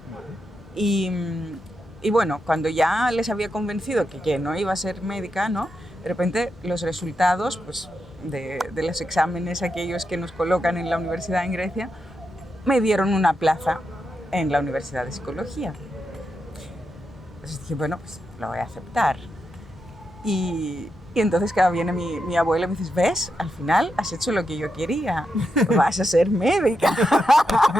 Y bueno, cuando ya les había convencido que no iba a ser médica, ¿no? De repente los resultados pues, de los exámenes aquellos que nos colocan en la universidad en Grecia me dieron una plaza en la Universidad de Psicología. Entonces dije, bueno, pues lo voy a aceptar. Y entonces cada viene mi abuela y me dice, ¿ves? Al final has hecho lo que yo quería, vas a ser médica.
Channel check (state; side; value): normal; both; correlation 0.85